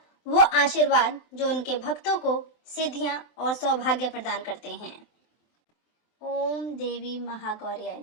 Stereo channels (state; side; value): late; right; 23 ms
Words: वो आशीर्वाद जो उनके भक्तों को सिद्धियां और सौभाग्य प्रदान करते हैं। ओम देवी महागौर्याय